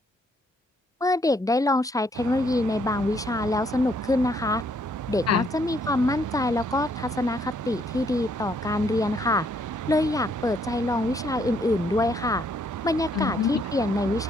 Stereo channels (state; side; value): normal; both; correlation 0.69